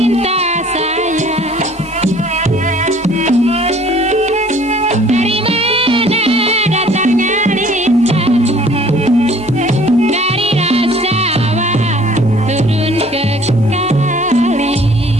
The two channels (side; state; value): both; normal; correlation 0.54